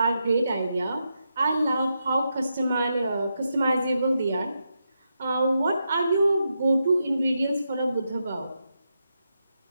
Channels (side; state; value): both; inverted; correlation -0.85